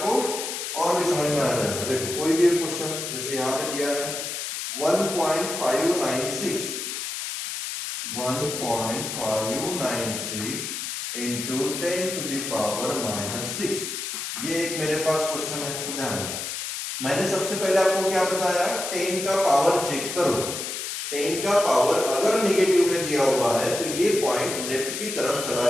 और भी समझ में आ जाएगा। देखो कोई भी एक क्वेश्चन जैसे यहाँ पे दिया है 1.596 इंटू 10 टू द पावर -6। ये एक मेरे पास क्वेश्चन है, तो ध्यान दें। मैंने सबसे पहले आपको क्या बताया, 10 का पावर चेक करो। 10 का पावर अगर नेगेटिव में दिया हुआ है तो ये पॉइंट लेफ्ट की तरफ चला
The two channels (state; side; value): noise; left; hiss, 5 dB below the sound